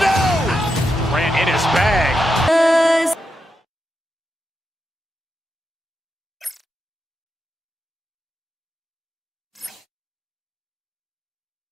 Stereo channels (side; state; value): both; normal; correlation 0.86